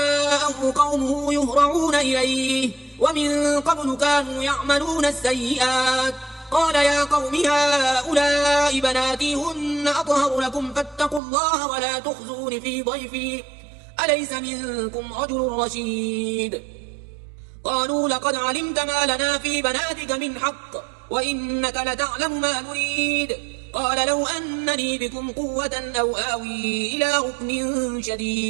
قومه يهرعون إليه ومن قبل كانوا يعملون السيئات قال يا قوم هؤلاء بناتي هن أطهر لكم فاتقوا الله ولا تخزون في ضيفي أليس منكم رجل رشيد. قالوا لقد علمت ما لنا في بناتك من حق وإنك لتعلم ما نريد. قال لو أنني بكم قوة أو آوي إلى ركن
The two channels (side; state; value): left; drops out; at 11.2 s